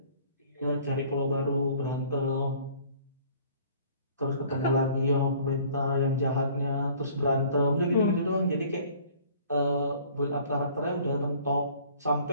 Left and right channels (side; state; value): both; inverted; correlation -0.53